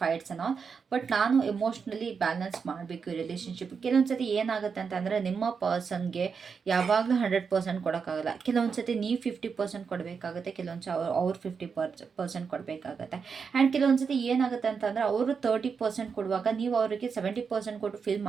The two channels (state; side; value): quieter; left; 5.8 dB